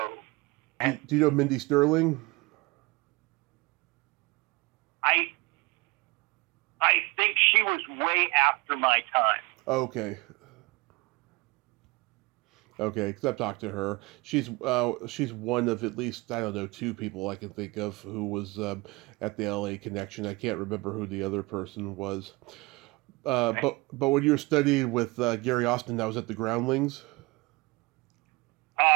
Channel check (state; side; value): quieter; left; 24.2 dB